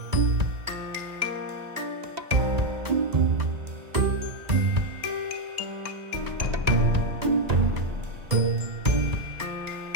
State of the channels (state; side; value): late; left; 1.9 ms